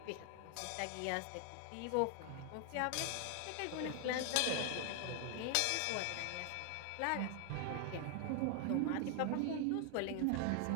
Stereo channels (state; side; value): different; both; correlation 0.00